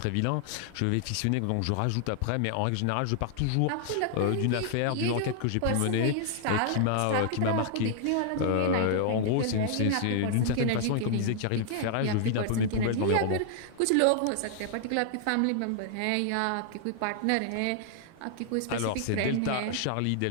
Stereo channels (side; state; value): both; different; correlation -0.01